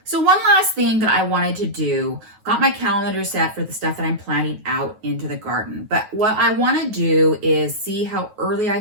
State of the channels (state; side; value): late; left; 9.3 ms